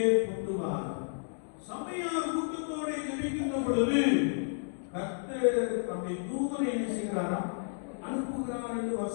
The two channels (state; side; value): silent; right; digital silence